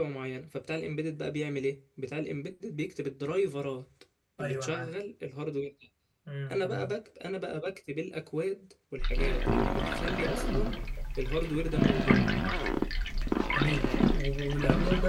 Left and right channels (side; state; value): both; identical; correlation 1.00